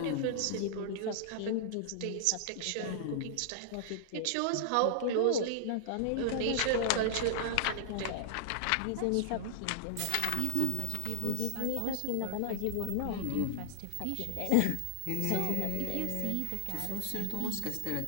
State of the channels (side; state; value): both; different; correlation -0.01